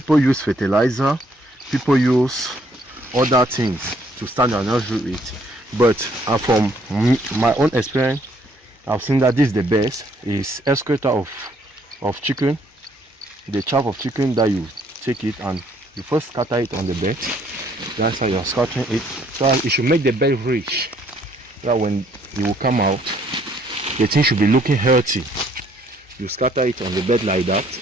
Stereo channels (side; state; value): both; normal; correlation 0.65